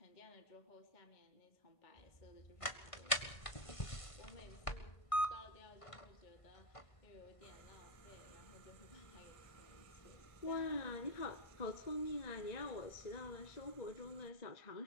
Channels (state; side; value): late; right; 1.5 ms